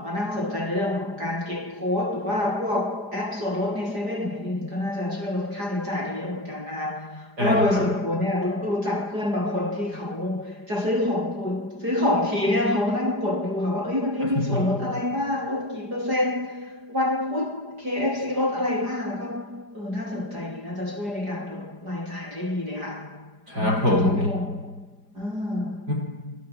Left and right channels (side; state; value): left; late; 4.9 ms